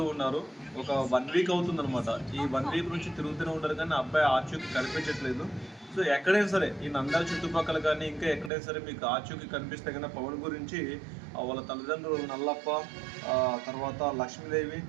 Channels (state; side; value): drops out; left; at 8.5 s